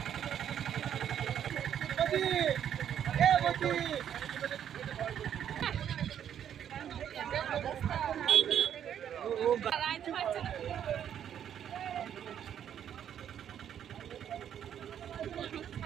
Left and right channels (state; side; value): quieter; left; 9.5 dB